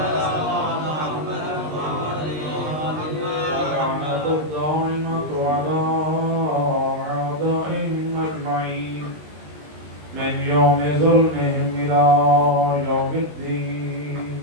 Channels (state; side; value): late; left; 20 ms